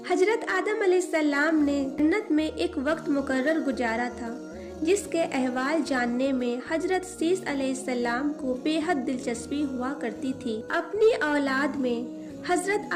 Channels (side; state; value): both; identical; correlation 1.00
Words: حضرت آدم علیہ السلام نے جنت میں ایک وقت مقرر گزارا تھا جس کے احوال جاننے میں حضرت سیس علیہ السلام کو بے حد دلچسپی ہوا کرتی تھی۔ اپنی اولاد میں حضرت